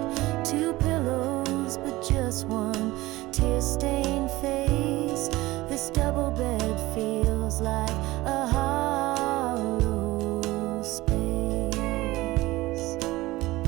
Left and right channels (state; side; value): quieter; left; 19.0 dB